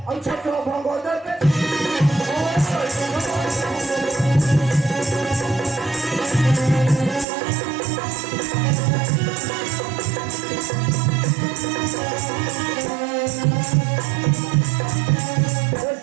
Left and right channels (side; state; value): left; drops out; at 7.2 s